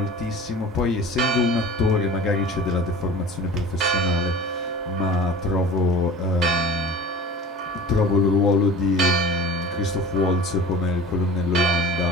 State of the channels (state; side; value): normal; both; correlation 0.39